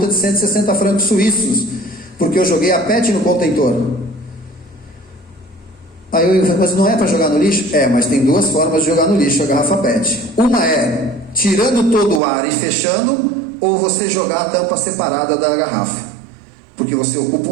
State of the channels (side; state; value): left; drops out; at 12.2 s